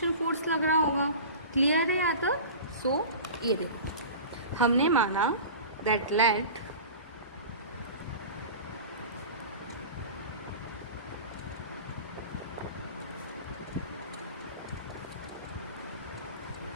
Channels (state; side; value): inverted; both; correlation -0.35